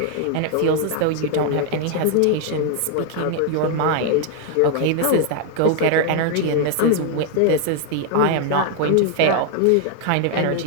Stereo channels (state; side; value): different; both; correlation 0.00